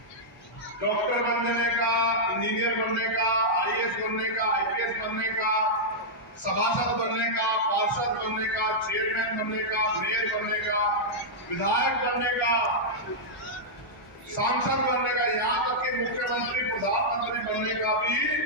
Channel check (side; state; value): both; normal; correlation -0.08